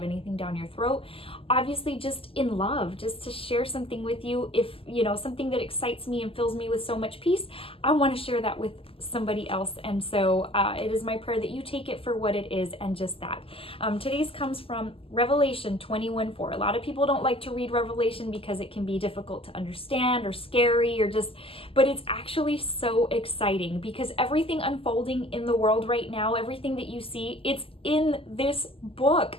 anything down your throat. Obviously, just in love, just to share something with you. If you know something that excites me and fills me with so much peace, I want to share that with somebody else. And so it is my prayer that you take it for what it is and just that. Today's comes from Revelation 21:4. A lot of people don't like to read Revelation because it can be difficult to understand or scary or just, but it's actually so exciting because everything unfolding in the world right now, everything that you see, it's in this book.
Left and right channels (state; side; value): late; right; 0.26 ms